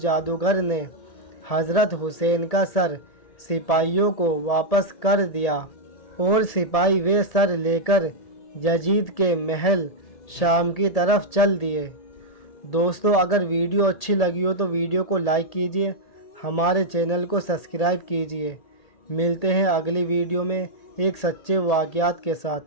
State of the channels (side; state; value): right; late; 1.8 ms